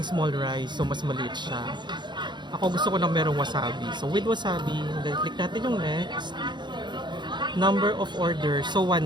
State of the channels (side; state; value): left; late; 0.22 ms